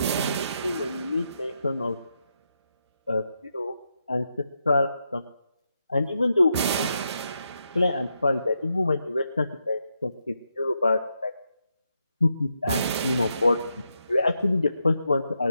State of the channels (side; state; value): both; inverted; correlation -0.83